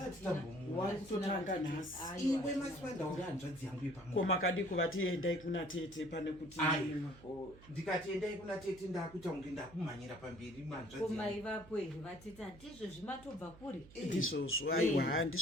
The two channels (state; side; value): noise; right; hum, 21 dB below the sound